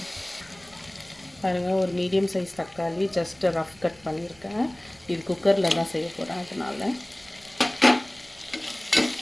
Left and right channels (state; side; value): noise; right; rumble, 28 dB below the sound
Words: பாருங்கள், ஒரு மீடியம் சைஸ் தக்காளி ஜஸ்ட்டு ரஃப் கட் பண்ணியிருக்கேன். இது குக்கரில் தான் செய்ய போகிறேன். அதனால்